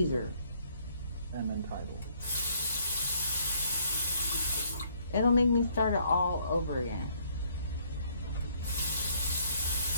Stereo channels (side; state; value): both; inverted; correlation -0.65